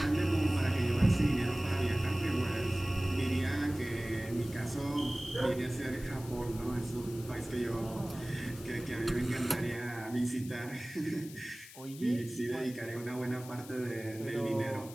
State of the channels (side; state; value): left; noise; hiss, 17 dB below the sound